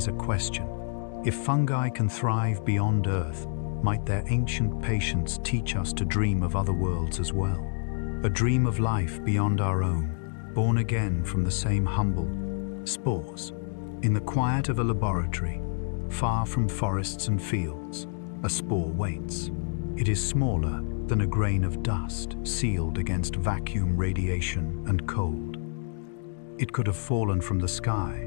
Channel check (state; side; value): silent; right; digital silence